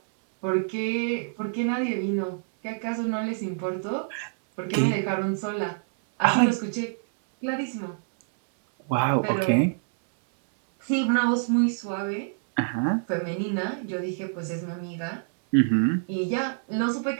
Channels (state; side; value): silent; left; 61 dB below the other